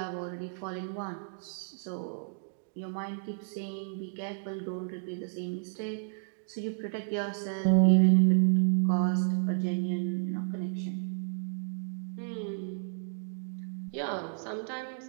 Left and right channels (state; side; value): silent; left; digital silence